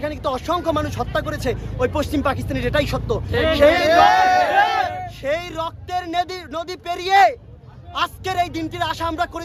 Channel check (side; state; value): both; identical; correlation 1.00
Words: কিন্তু অসংখ্য মানুষ হত্যা করেছে ওই পশ্চিম পাকিস্তানের, এটাই সত্য। সেই রক্তের নদী পেরিয়ে আজকের এই দিনটির আশা আমরা